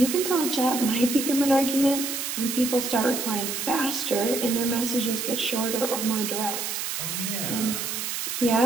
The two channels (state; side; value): noise; right; hiss, 3 dB below the sound